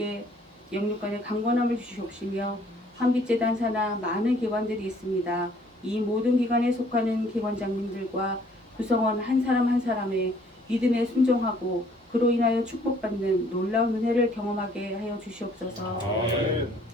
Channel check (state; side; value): normal; both; correlation 0.60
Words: 영육간의 강건함을 주시옵시며 한빛재단 산하 많은 기관들이 있습니다. 이 모든 기관에 속하는 기관장님들과 구성원 한 사람 한 사람의 믿음에 순종하고 그로 인하여 축복받는 놀라운 은혜를 경험하게 하여 주시옵소서.